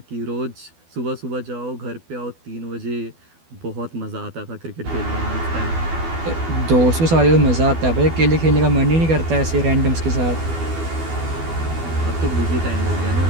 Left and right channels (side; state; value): left; late; 12 ms